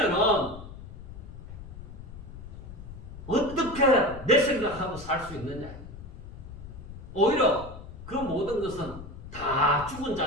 어떻게 내 생각하고 살 수 있느냐. 오히려 그 모든 것은 다 죽은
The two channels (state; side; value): noise; left; rumble, 13 dB below the sound